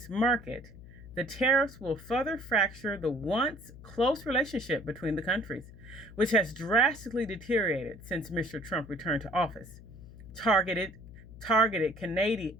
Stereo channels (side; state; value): left; noise; hum, 17 dB below the sound